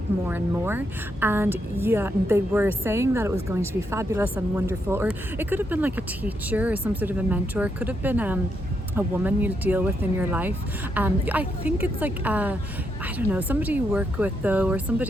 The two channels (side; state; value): both; normal; correlation 0.80